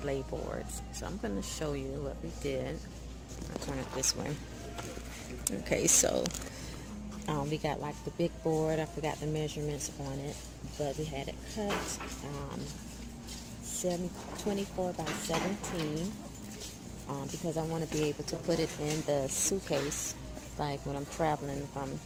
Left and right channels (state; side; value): identical; both; correlation 1.00